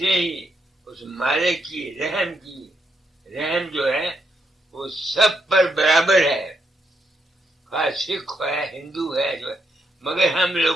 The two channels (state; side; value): normal; both; correlation 0.78